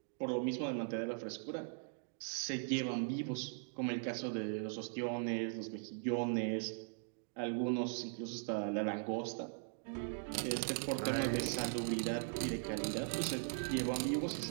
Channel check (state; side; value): silent; left; digital silence